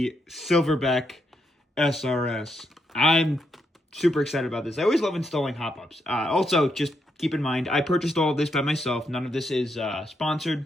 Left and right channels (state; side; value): normal; both; correlation 0.79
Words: Silverback SRS. I'm super excited about this. I always love installing hop-ups. Also, just keep in mind, I purchased all of this by myself. None of this is sponsored.